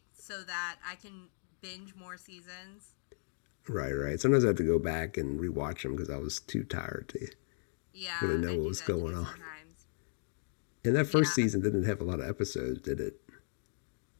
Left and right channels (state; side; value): silent; right; digital silence